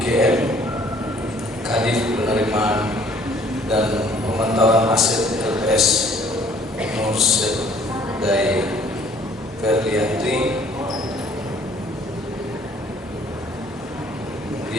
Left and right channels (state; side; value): normal; both; correlation 0.58